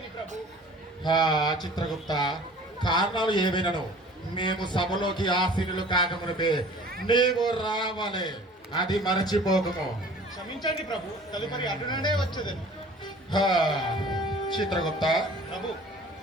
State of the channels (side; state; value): both; normal; correlation 0.47